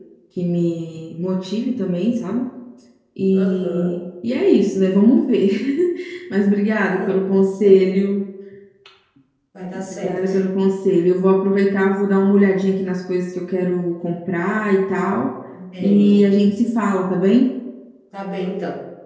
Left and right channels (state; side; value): identical; both; correlation 1.00